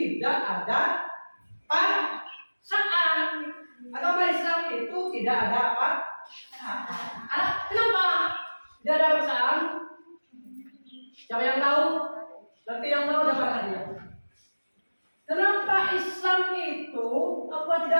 ada paksaan. Agama Islam itu tidak ada paksaan. Kenapa tidak ada paksaan? Siapa yang tahu? Nanti yang tahu dapat hadiah. Kenapa Islam itu apa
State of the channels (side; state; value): both; inverted; correlation -1.00